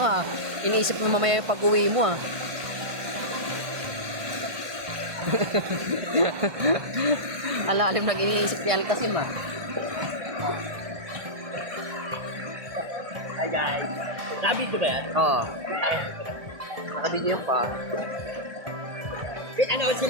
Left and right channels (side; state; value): left; late; 1.7 ms